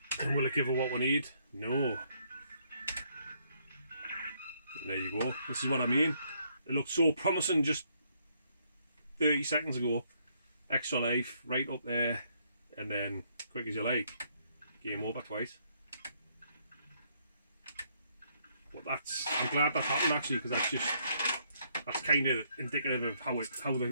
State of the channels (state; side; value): inverted; both; correlation -0.71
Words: And will it give her what we need? No. There you go. This is what I mean. It looked so promising just 30 seconds ago. Extra life right up there, and then quick as you like, game over twice. But I'm glad that happened actually, because that's kind of indicative of how it